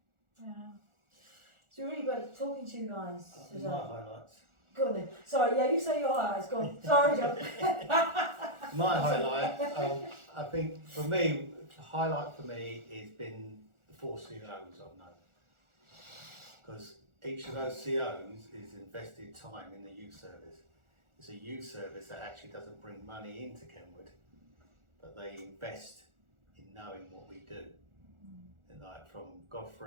Yeah. So really great talking to you guys today. My highlights. Go on then. Sorry, yeah, you say your highlights, go on. Sorry, John. My highlight, I think for me, the highlight for me has been the 4 COs I've known. Because each of those COs is invested time in the youth service. It's a youth service that actually doesn't bring money into Kenward, but they invest in knowing what we do. And like from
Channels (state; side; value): late; left; 1.4 ms